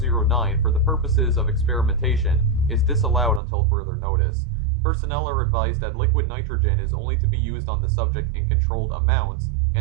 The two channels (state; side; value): drops out; left; at 3.4 s